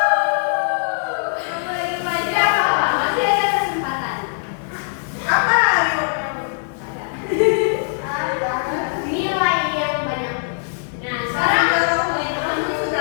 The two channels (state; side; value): silent; right; digital silence